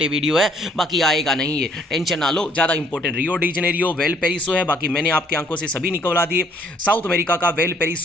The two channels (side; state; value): both; normal; correlation 0.64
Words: है, बाकी आएगा नहीं, ये टेंशन ना लो। ज़्यादा important Rio de Janeiro Valparaiso है, बाकी मैंने आपकी आंखों से सभी निकलवा दिए। साउथ अमेरिका का वेल